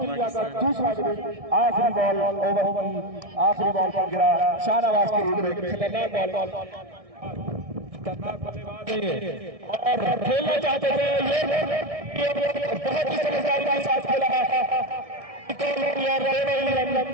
आखिरी बॉल ओवर की आखिरी बॉल पर गिरा शाहनवाज के रूप में। खतरनाक बॉल और खेलना चाहते थे ये बहुत ही समझदारी के साथ खेला।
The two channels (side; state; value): left; late; 1.6 ms